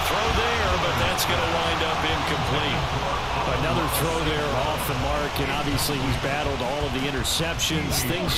throw there, but that's going to wind up incomplete. Another throw there off the mark, and obviously he's battled all of the interceptions. Things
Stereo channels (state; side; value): identical; both; correlation 1.00